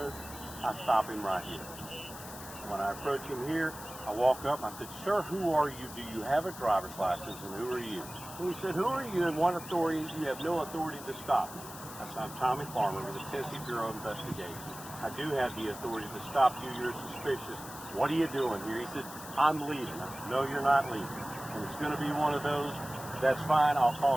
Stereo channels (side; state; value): left; noise; hiss, 13 dB below the sound